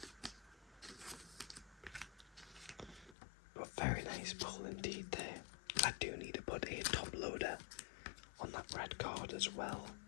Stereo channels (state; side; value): drops out; right; at 3.2 s